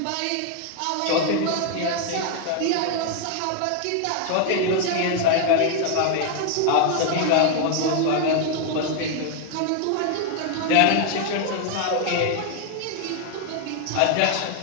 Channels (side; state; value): both; different; correlation 0.01